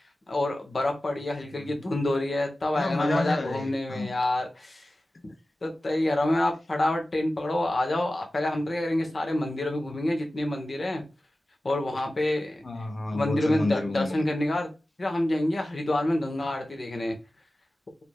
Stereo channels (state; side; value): normal; both; correlation 0.95